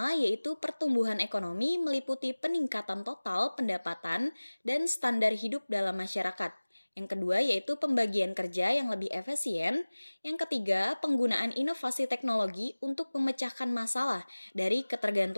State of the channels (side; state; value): both; inverted; correlation -1.00